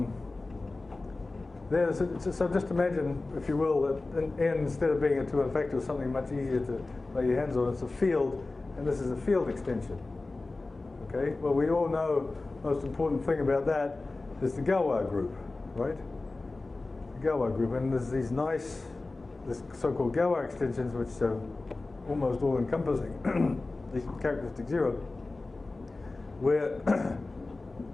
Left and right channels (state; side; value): quieter; right; 3.3 dB